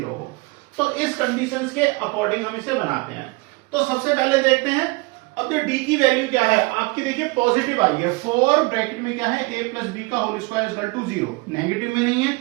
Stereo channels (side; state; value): left; quieter; 26.1 dB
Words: हो। तो इस कंडीशंस के अकॉर्डिंग हम इसे बनाते हैं। तो सबसे पहले देखते हैं, अब जो d की वैल्यू क्या है आपकी, देखिए पॉजिटिव आ रही है, 4 ब्रैकेट में क्या है a प्लस बी का whole square equal to 0, negative में नहीं है।